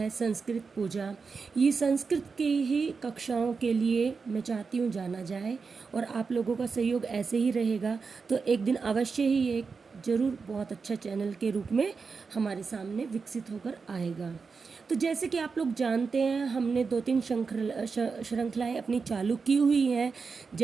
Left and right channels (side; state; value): left; quieter; 5.0 dB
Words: संस्कृत पूजा, ये संस्कृत की ही कक्षाओं के लिए मैं चाहती हूँ जाना जाए, और आप लोगों का सहयोग ऐसे ही रहेगा तो एक दिन अवश्य ही ये ज़रूर बहुत अच्छा चैनल के रूप में हमारे सामने विकसित होकर आएगा। तो जैसे कि आप लोग जानते हैं, हमने 2-3 श्रृंखलाएँ अपनी चालू की हुई हैं,